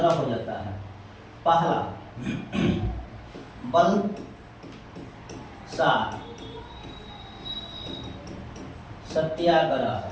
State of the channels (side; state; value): both; identical; correlation 1.00